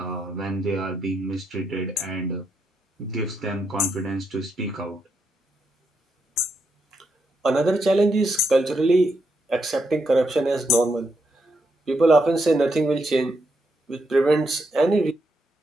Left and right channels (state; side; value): normal; both; correlation 0.80